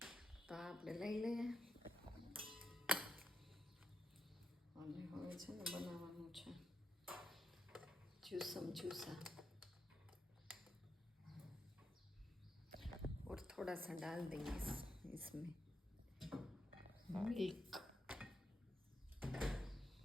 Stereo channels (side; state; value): both; normal; correlation 0.82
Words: તો આપણે લઈ લઈએ અને હવે છે ને બનાવવાનું છે जूसा और थोड़ा सा डाल देंगे इसमें मिल्क।